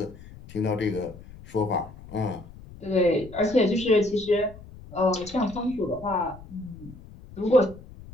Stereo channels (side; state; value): left; noise; rumble, 18 dB below the sound